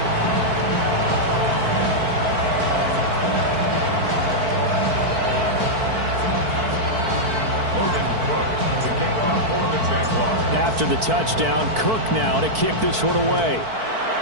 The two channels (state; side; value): late; left; 4.5 ms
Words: After the touchdown, Cook now to kick this one away.